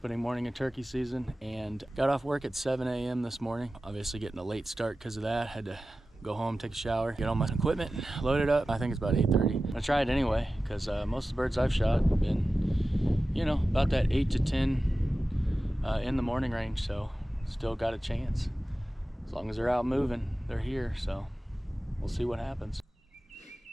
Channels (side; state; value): both; normal; correlation 0.95